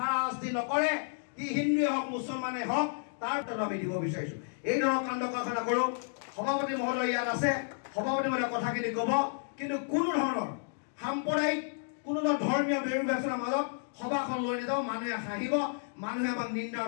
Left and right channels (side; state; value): right; silent; digital silence